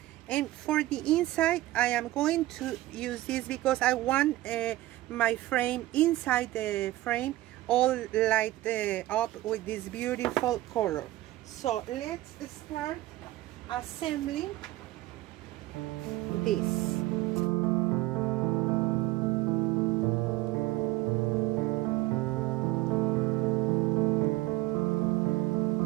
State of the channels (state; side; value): quieter; left; 17.1 dB